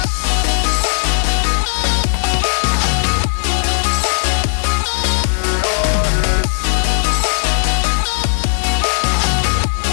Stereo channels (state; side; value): silent; right; 69 dB below the other